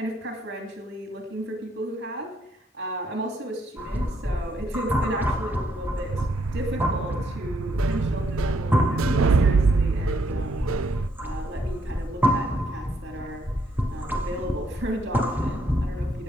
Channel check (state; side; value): normal; both; correlation 0.72